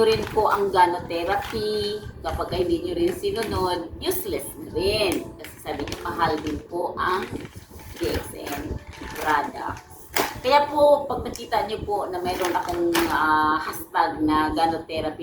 rin po ang gynotherapy. Kapag hindi nyo rin sinunod, useless na rin. Kasi sabi nyo, mahal din po ang DXN products. Kaya po, pag nakita nyo po na mayroon akong hashtag na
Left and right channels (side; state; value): both; identical; correlation 1.00